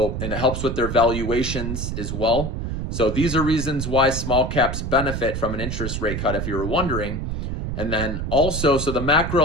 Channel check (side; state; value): right; noise; rumble, 4 dB below the sound